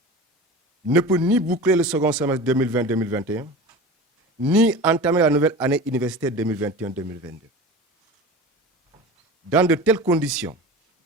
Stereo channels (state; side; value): normal; both; correlation 0.33